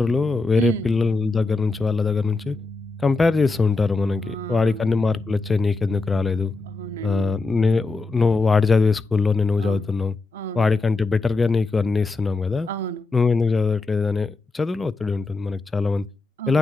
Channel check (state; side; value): quieter; right; 3.6 dB